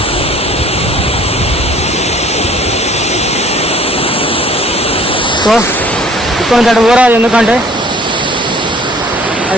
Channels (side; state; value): both; normal; correlation 0.53